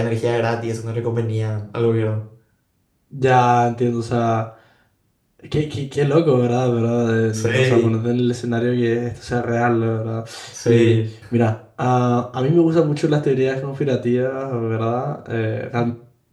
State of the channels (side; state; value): both; identical; correlation 1.00